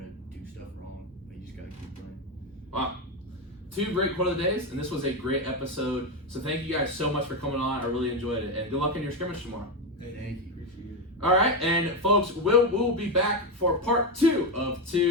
do stuff wrong, but you just gotta keep playing. Wow. 2 great quote of the days, and this was a great episode. So thank you guys so much for coming on. I really enjoyed it, and good luck in your scrimmage tomorrow. Thank you. Appreciate it. All right, and folks, we'll be back for part 2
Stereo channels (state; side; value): normal; both; correlation 0.11